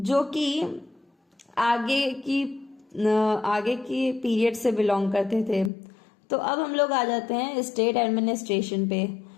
कि आगे की पीरियड से बिलोंग करते थे। तो अब हम लोग आ जाते हैं स्टेट एडमिनिस्ट्रेशन पे।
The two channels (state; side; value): drops out; right; at 5.7 s